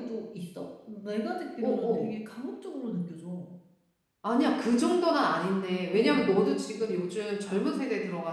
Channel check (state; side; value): identical; both; correlation 1.00